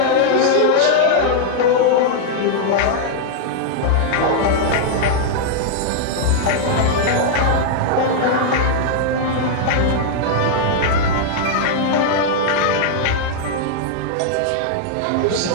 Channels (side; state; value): both; different; correlation -0.01